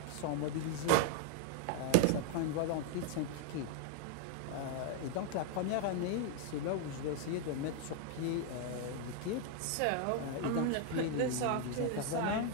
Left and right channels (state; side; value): different; both; correlation 0.01